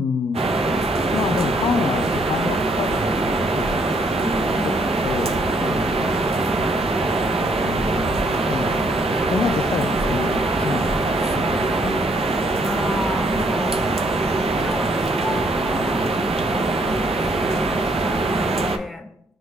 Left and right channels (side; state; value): both; normal; correlation 0.68